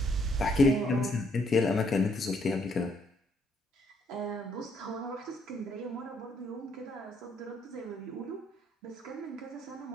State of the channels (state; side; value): normal; both; correlation 0.70